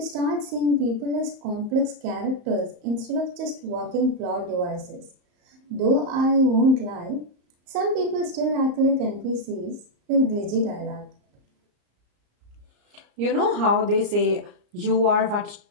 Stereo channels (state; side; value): late; left; 34 ms